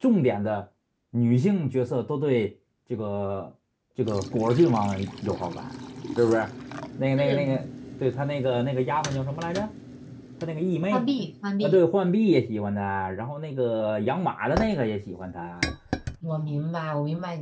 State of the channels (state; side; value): identical; both; correlation 1.00